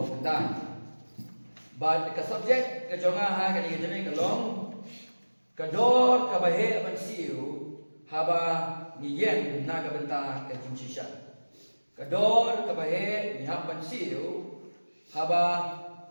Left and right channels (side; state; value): both; inverted; correlation -1.00